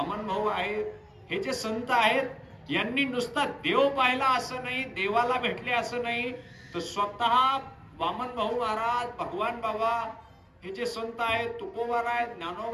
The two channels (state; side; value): identical; both; correlation 1.00